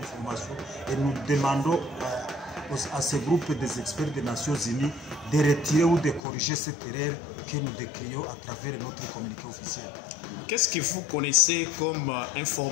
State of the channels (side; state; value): right; drops out; at 6.2 s